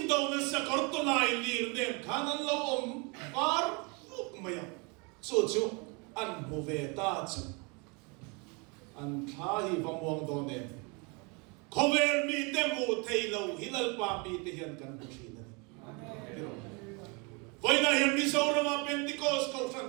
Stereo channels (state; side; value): quieter; left; 31.1 dB